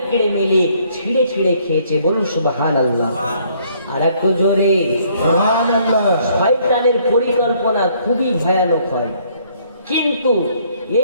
মিলে ছিঁড়ে ছিঁড়ে খেয়েছে। বলুন সুবহানাল্লাহ। আর একটু জোরে সুবহানাল্লাহ। শয়তানের পরিকল্পনা খুবই ভয়ানক হয়, কিন্তু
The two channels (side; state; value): both; inverted; correlation -0.64